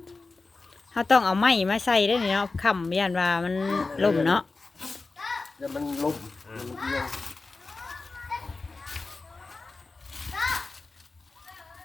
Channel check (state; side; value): quieter; right; 3.8 dB